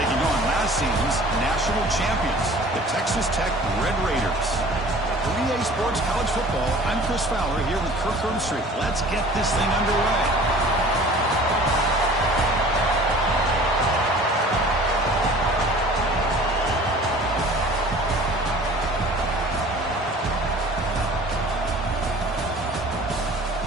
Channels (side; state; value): both; normal; correlation 0.46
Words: on last season's national champions, the Texas Tech Red Raiders. 3A Sports College Football. I'm Chris Fowler here with Kirk Street. Let's get this thing underway.